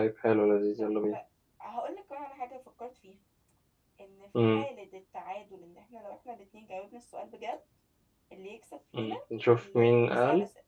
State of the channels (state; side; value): identical; both; correlation 1.00